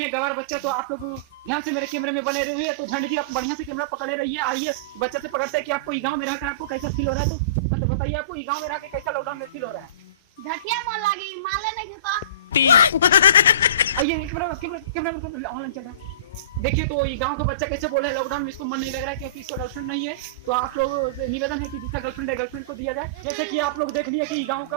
गवार बच्चा। तो आप लोग ध्यान से मेरे कैमरे में बने रहिए। तो झंड जी आप बढ़िया से कैमरा पकड़े रहिए। आइए बच्चे से पकड़ते हैं कि आपको गांव में रहकर आपको कैसा फील हो रहा है। तो मतलब बताइए आपको गांव में रह के कैसा लॉकडाउन में फील हो रहा है। झटिया मन लागी माले नहीं देता आइए कैमरा ऑनलाइन चल रहा है। देखिए तो ये गांव का बच्चा कैसे बोल रहा है लॉकडाउन में इसको मन नहीं लग रहा है क्योंकि इसका गर्लफ्रेंड नहीं है। तो आप लोग से निवेदन है कि जिसका गर्लफ्रेंड है गर्लफ्रेंड को दिया जाए। जैसे कि आप लोग देख लिए कि गांव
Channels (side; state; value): both; inverted; correlation -0.31